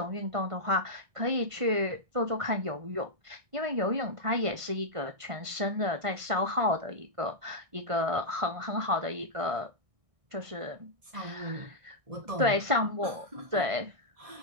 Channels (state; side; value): late; left; 1.5 ms